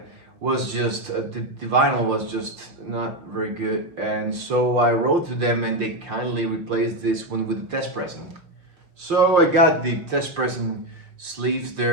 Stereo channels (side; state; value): left; late; 5.9 ms